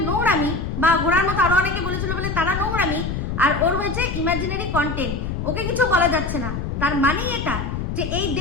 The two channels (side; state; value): left; noise; rumble, 3 dB below the sound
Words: নোংরামি, বা ঘোড়ার মতো আরো অনেকে বলেছিল বলে তারা নোংরামি, আর ওর হয়েছে ইমাজিনারি কন্টেন্ট। ওকে কিছু বলা যাচ্ছে না। তার মানে এটা যে এই